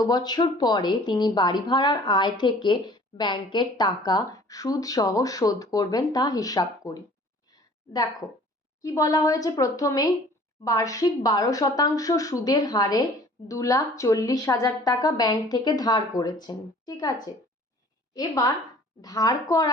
বছর পরে তিনি বাড়ি ভাড়ার আয় থেকে ব্যাংকের টাকা সুদ সহ শোধ করবেন তা হিসাব করি। দেখো কি বলা হয়েছে, প্রথমেই বার্ষিক 12% সুদের হারে 2,40,000 টাকা ব্যাংক থেকে ধার করেছেন, ঠিক আছে। এবার ধার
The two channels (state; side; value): normal; both; correlation 0.50